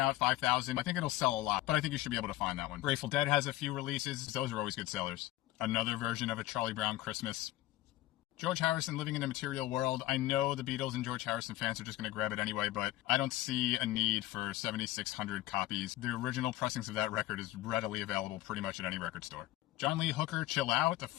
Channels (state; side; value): quieter; right; 16.3 dB